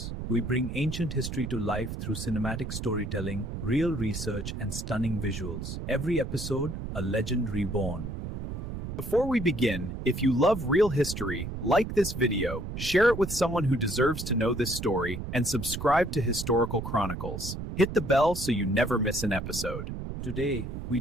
We bring ancient history to life through cinematic storytelling, real research, and stunning visuals. Every episode, a legend reborn. Before we begin, if you love real history, like this video, share it with someone who deserves to know this story, and subscribe to Historical Chronicles. Hit the bell so you never miss an episode. Today, we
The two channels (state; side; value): noise; right; rumble, 6 dB below the sound